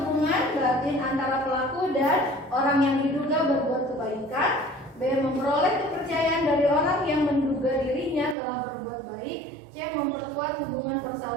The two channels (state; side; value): drops out; left; at 8.3 s